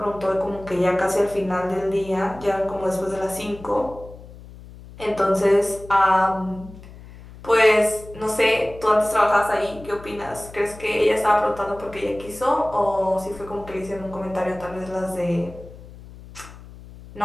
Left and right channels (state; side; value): noise; left; hum, 18 dB below the sound